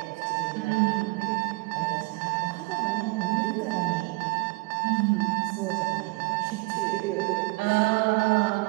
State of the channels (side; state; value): left; quieter; 26.5 dB